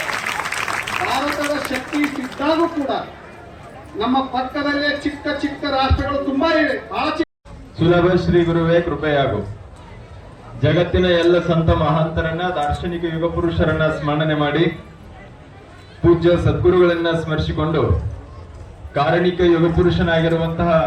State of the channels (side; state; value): both; identical; correlation 1.00